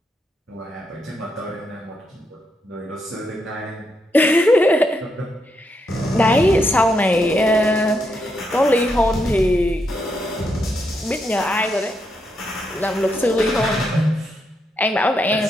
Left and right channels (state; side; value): normal; both; correlation 0.80